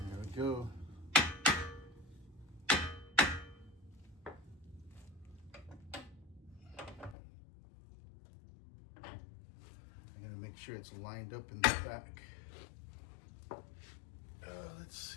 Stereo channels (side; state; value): right; drops out; at 7.2 s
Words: we go. I'm gonna make sure it's lined up in the back. Let's